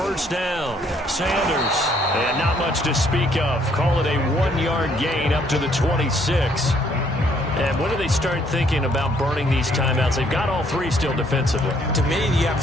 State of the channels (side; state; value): both; normal; correlation 0.66